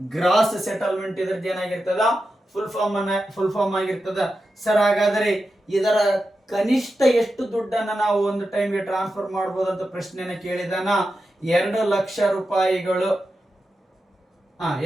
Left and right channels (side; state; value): both; normal; correlation 0.90